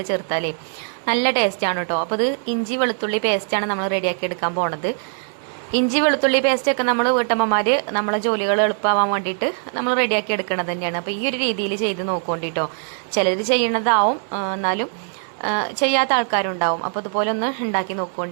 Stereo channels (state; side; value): silent; left; 65 dB below the other